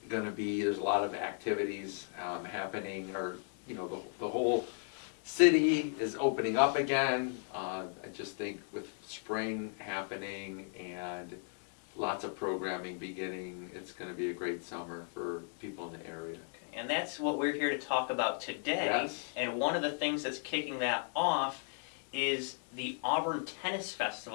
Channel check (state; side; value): silent; right; 54 dB below the other